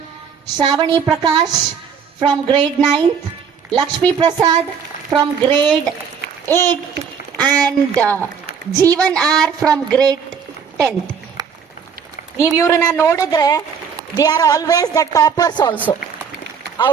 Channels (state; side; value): quieter; left; 6.7 dB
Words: Shravani Prakash from grade 9th, Lakshmi Prasad from grade 8th and Jeevan R from grade 10th. ನೀವು ಇವ್ರನ್ನ ನೋಡಿದ್ರೆ they are always the toppers also.